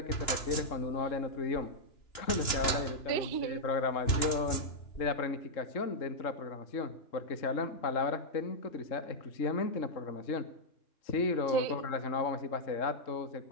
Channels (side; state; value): right; late; 2.9 ms